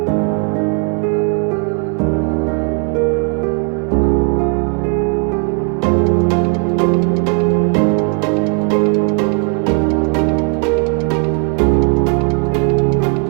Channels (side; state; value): left; quieter; 38.7 dB